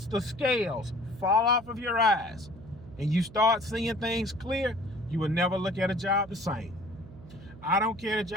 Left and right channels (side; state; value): right; noise; hum, 18 dB below the sound